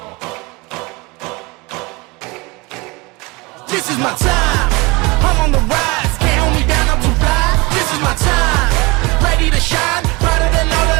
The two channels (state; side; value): quieter; left; 25.4 dB